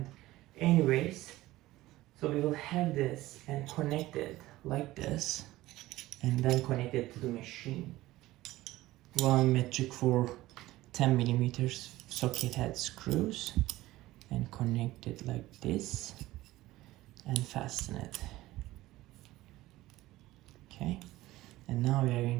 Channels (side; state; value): left; quieter; 17.2 dB